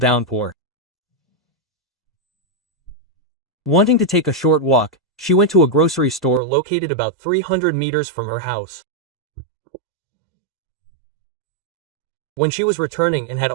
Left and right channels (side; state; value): left; drops out; at 6.4 s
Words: Wanting to take a short walk, she went to a grocery store located about 300 meters from her house. When she was returning and had